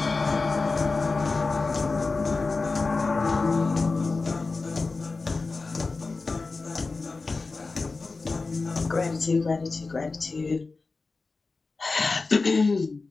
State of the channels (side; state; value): right; quieter; 3.9 dB